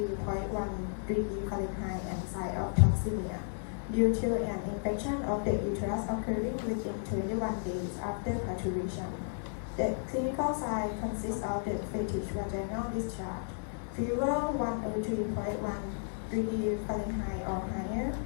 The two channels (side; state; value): right; silent; 56 dB below the other